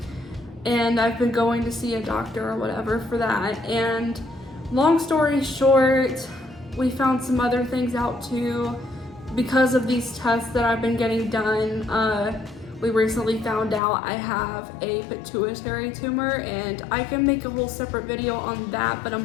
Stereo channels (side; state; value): right; drops out; at 13.8 s